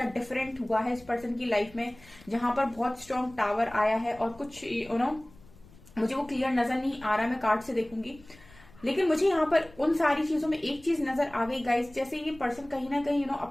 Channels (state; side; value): noise; left; rumble, 24 dB below the sound